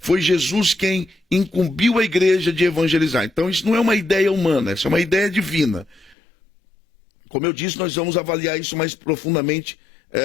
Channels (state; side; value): drops out; right; at 6.2 s